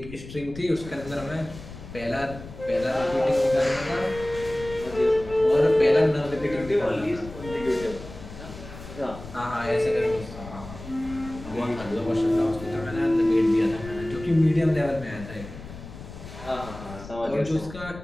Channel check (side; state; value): left; noise; rumble, 14 dB below the sound